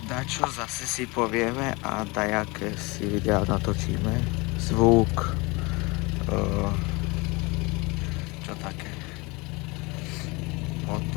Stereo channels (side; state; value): right; quieter; 25.7 dB